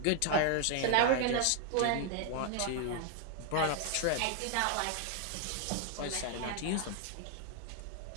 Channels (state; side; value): different; both; correlation 0.00